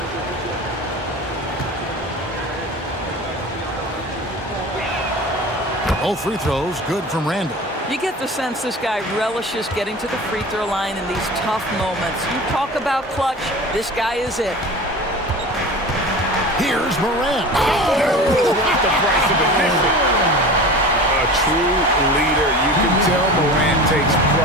Both free throws good from Randall. You get the sense this guy relishes getting to the free throw line in these tough moments. You talk about clutch, this guy is it. Here's Morant. What the price of admission? A true leader. You can tell Morant takes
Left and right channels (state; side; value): normal; both; correlation 0.35